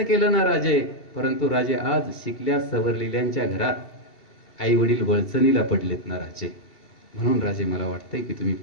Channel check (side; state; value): right; late; 2.7 ms